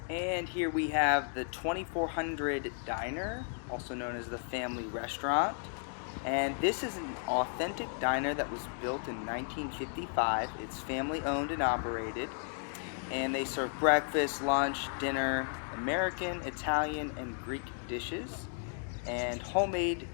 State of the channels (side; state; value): right; silent; 55 dB below the other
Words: And here we have the 2400 Diner, also known as the Family Restaurant. And this is an authentic diner that was built in 1955. It's family owned and operated. And they serve breakfast, lunch, dinner, American, Italian, and Greek dishes, and homemade